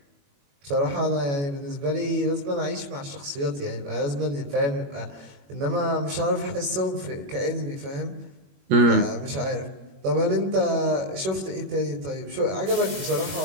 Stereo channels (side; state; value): left; late; 21 ms